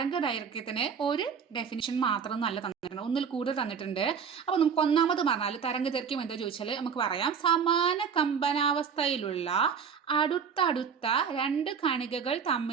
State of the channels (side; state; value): left; quieter; 6.6 dB